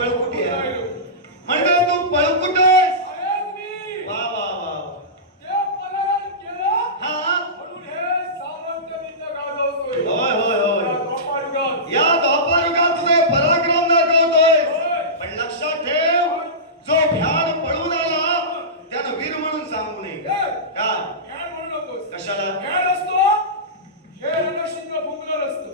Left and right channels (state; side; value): normal; both; correlation -0.19